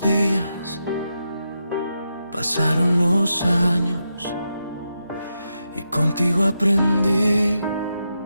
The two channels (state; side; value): inverted; both; correlation -0.86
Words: pasaron los años, y contigo aprendí